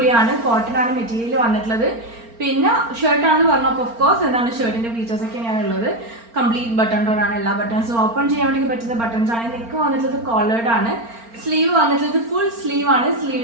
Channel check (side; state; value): left; late; 4.4 ms